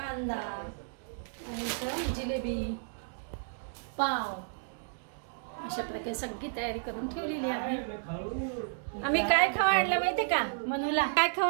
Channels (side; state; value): left; silent; digital silence